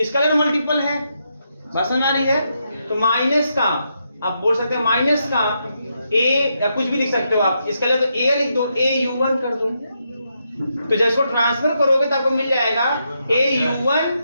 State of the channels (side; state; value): both; inverted; correlation -0.81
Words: multiple है। बात समझ आ रही है? तो माइनस का आप बोल सकते हैं, माइनस का A या कुछ भी लिख सकते हो आप, स्केलर तो A लिख दो, A U1 कर दो। तो जब इसको ट्रांसफर करोगे तो आपको मिल जाएगा A U1